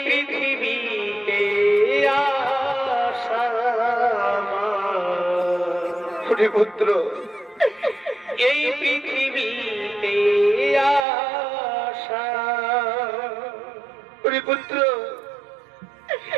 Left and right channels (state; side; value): drops out; left; at 11.1 s